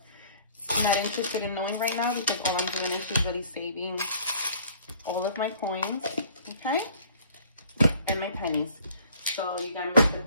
I'm not interested in knowing right now because all I'm doing is just really saving all of my coins, okay, and my pennies. So you got Mr.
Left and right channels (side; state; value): both; inverted; correlation -0.54